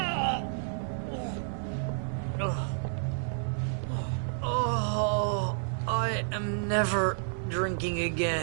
Oh, I am never drinking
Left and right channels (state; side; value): silent; left; digital silence